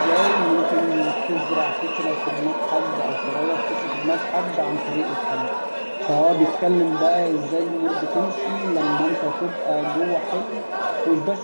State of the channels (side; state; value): both; inverted; correlation -1.00